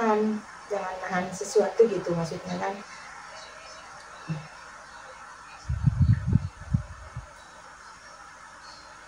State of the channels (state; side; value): identical; both; correlation 1.00